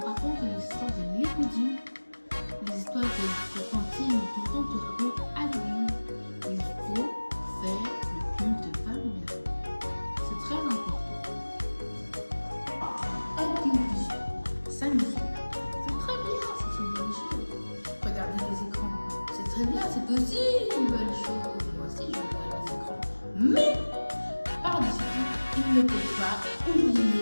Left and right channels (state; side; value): inverted; both; correlation -1.00